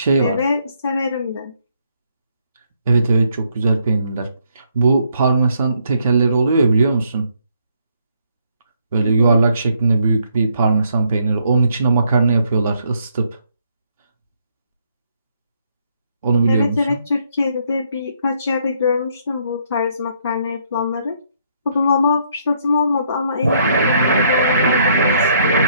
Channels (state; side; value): inverted; both; correlation -0.70